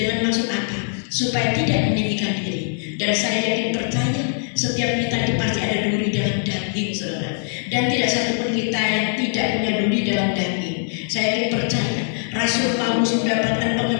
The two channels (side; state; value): right; silent; digital silence